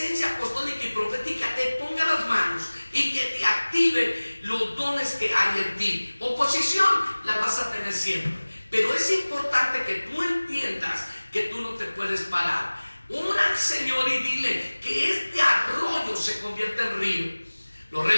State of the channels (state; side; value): inverted; both; correlation -1.00